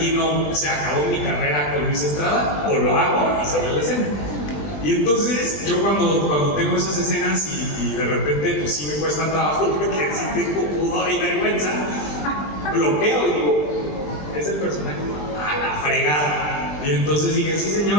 no se acabó mi carrera con Luis Estrada, o lo hago y sale la escena. Y entonces yo cuando tengo esas escenas y de repente pues sí me cuesta trabajo, porque sí tengo pudor y vergüenza, bloqueo y digo, es el personaje, a la fregada. Y entonces dije, sí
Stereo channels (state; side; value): late; right; 20 ms